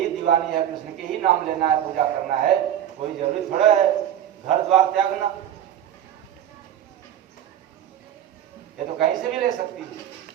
दीवानी है, कृष्ण के ही नाम लेना है, पूजा करना है, कोई जरूरी थोड़ा है घर द्वार त्यागना। ये तो कहीं से भी ले सकती है।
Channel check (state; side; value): quieter; left; 10.7 dB